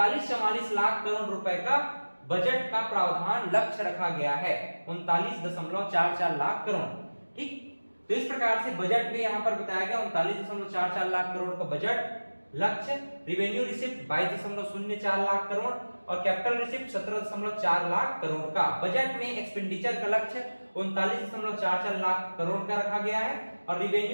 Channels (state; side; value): inverted; both; correlation -1.00